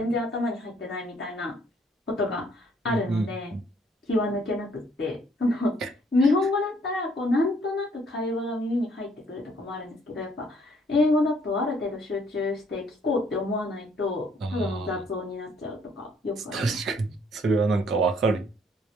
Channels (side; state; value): both; normal; correlation 0.64